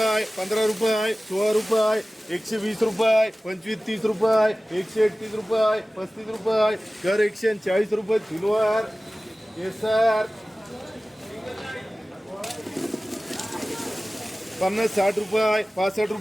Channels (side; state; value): both; normal; correlation 0.97